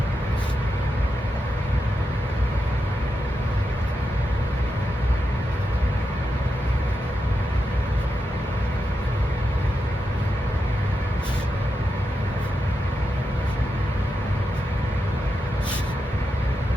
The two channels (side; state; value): both; normal; correlation 0.87